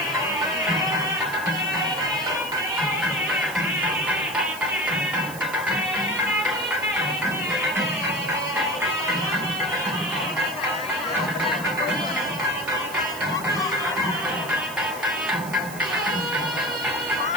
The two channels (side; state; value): right; noise; hiss, 14 dB below the sound